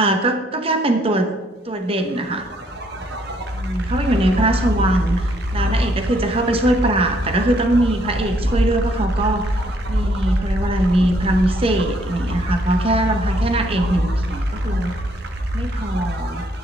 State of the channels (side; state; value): both; normal; correlation 0.68